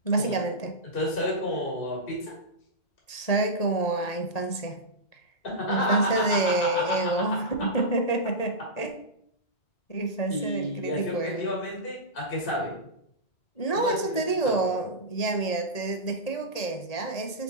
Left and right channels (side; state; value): right; late; 1.8 ms